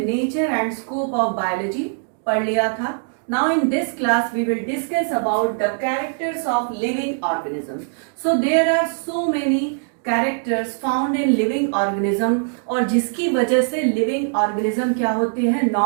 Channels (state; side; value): silent; left; digital silence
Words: and scope of biology पढ़ लिया था. Now in this class we will discuss about the characters of living organisms. So there are so many characters found in living organism और जिसकी वजह से लिविंग ऑर्गेनिज्म क्या होते हैं,